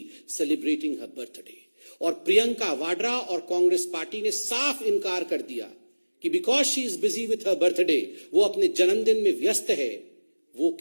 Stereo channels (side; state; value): both; inverted; correlation -1.00